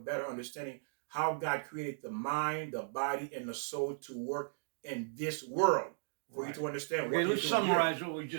understanding how God created the mind, the body, and the soul to work in this world. For you to understand. Okay, let's summarize what we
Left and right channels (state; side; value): silent; left; digital silence